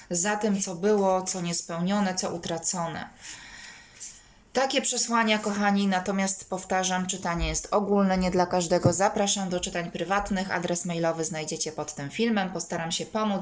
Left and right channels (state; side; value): identical; both; correlation 1.00